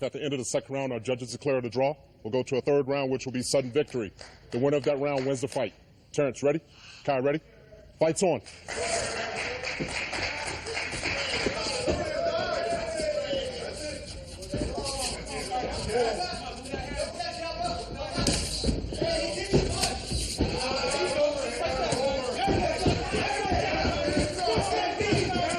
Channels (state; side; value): identical; both; correlation 1.00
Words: at the end of the second round our judges declare it a draw, we'll go to a third round, which will be sudden victory. The winner of that round wins the fight. Terrence, ready? Kai, ready? Fight's on.